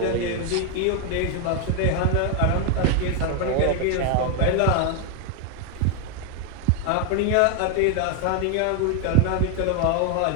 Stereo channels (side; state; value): both; different; correlation 0.01